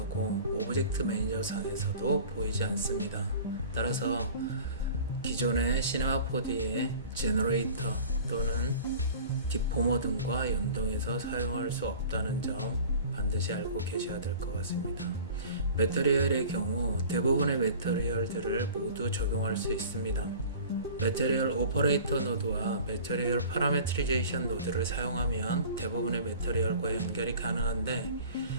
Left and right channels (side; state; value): both; inverted; correlation -0.43